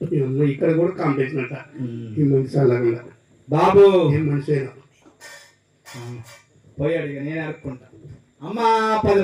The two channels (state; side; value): identical; both; correlation 1.00